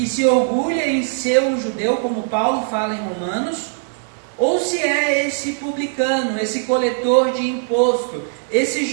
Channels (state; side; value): silent; left; digital silence